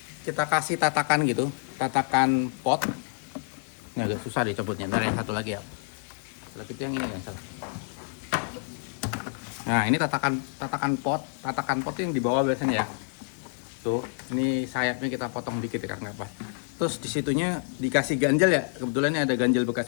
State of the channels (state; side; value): silent; right; digital silence